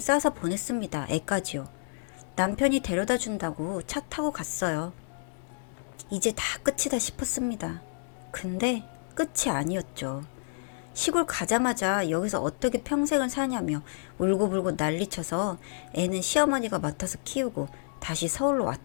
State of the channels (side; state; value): right; silent; digital silence